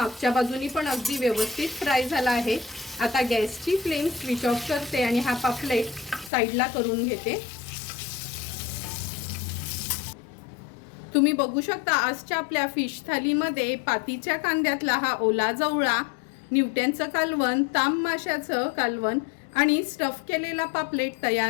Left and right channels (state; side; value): drops out; right; at 6.3 s